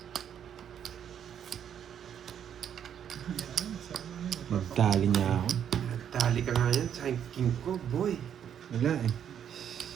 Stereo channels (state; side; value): quieter; left; 9.0 dB